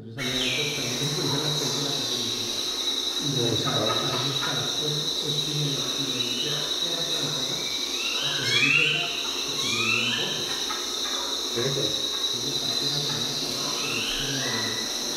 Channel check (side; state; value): both; identical; correlation 1.00